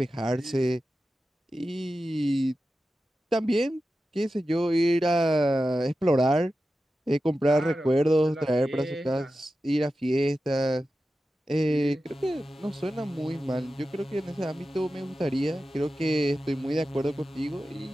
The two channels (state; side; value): normal; both; correlation 0.93